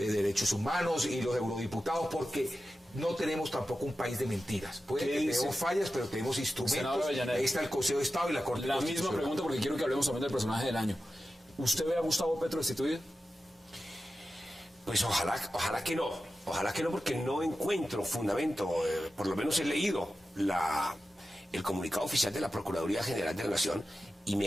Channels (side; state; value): both; normal; correlation 0.93